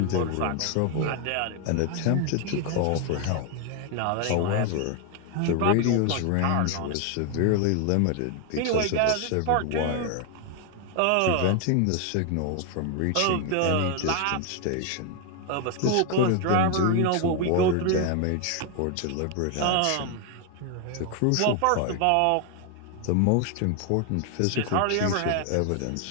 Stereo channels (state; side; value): different; both; correlation 0.01